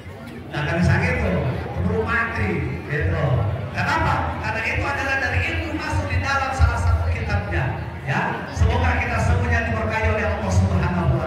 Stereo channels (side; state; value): both; identical; correlation 1.00